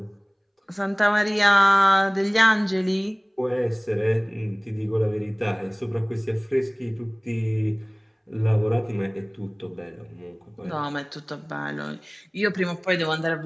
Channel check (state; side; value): identical; both; correlation 1.00